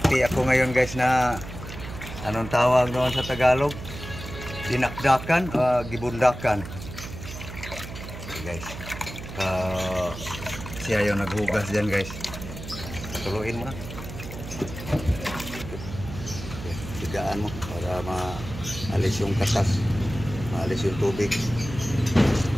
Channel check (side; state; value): right; noise; hum, 11 dB below the sound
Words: ako ngayon guys na anong tawag doon sa Tagalog? Dinakdakan, gibundakan. Okay guys. Siya yung naghugas dyan guys. Patuluin mo na. Tigaan mo para maalis yung katas, maalis yung tubig.